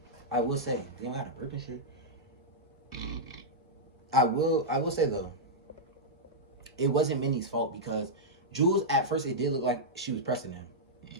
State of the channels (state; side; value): normal; both; correlation -0.09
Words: I will say, they don't have to burp and shit. I will say though, it wasn't Minnie's fault, because Jules, at first, it did look like she was pressing him.